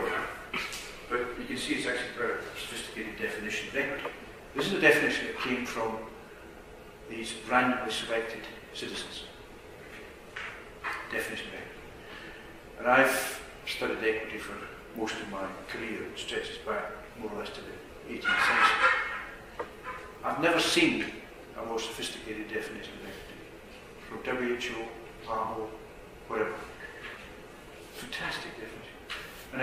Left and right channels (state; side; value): identical; both; correlation 1.00